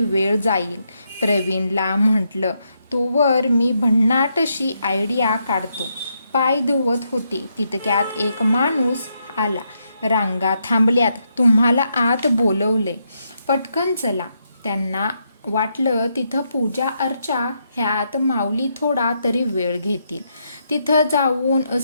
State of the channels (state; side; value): inverted; both; correlation -0.79